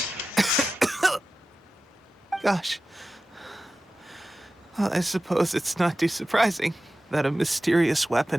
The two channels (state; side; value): normal; both; correlation 0.94